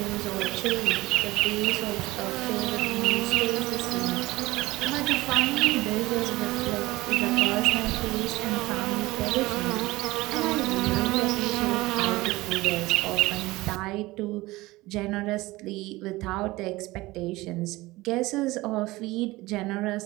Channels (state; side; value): quieter; left; 19.8 dB